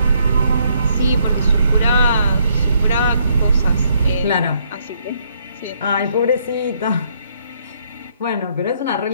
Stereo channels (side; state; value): both; inverted; correlation -0.70